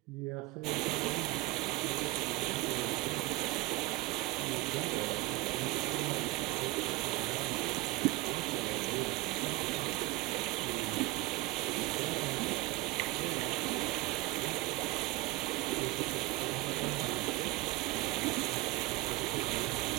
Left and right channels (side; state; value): left; quieter; 19.9 dB